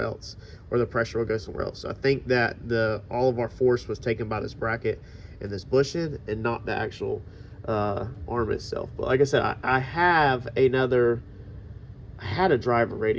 or the pressure will go somewhere else. So I think that all of our force was taken by this bracket and this bushing, and not the actual arm itself. But like I said, I had a driver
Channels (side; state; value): both; identical; correlation 1.00